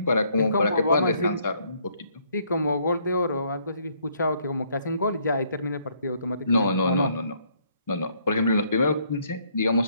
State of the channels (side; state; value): both; inverted; correlation -0.68